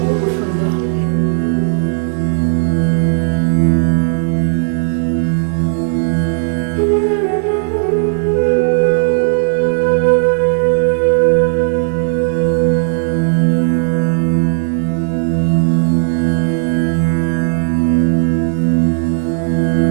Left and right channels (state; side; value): silent; left; 64 dB below the other